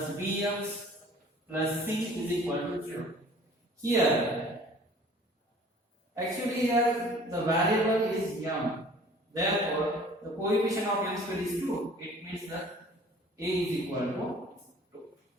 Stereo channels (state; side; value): normal; both; correlation 0.50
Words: bx plus c is equal to 0. Here, actually here the variable is m. Therefore, the coefficient of m square is 2. It means that a is equal to 2.